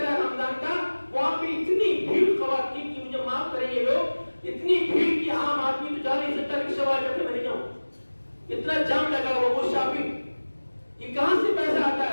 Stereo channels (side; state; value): both; inverted; correlation -1.00